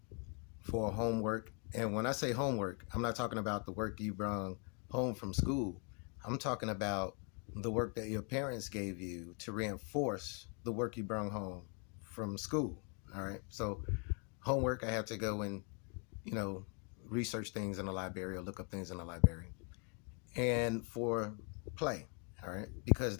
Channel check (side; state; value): right; quieter; 38.0 dB